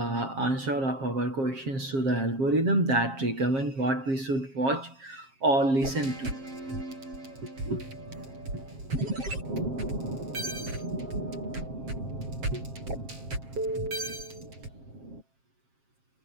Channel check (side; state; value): left; late; 7.5 ms